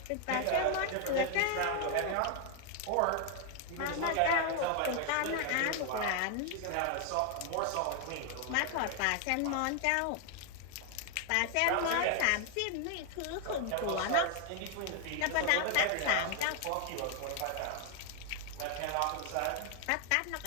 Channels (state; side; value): different; both; correlation 0.00